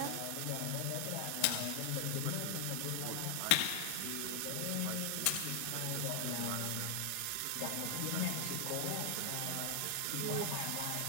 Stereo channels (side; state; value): both; different; correlation 0.00